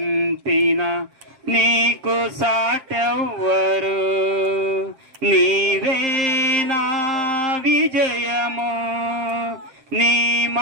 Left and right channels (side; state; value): left; late; 7.6 ms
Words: నీకు సాటెవ్వరు నీవే నా విజయము నీ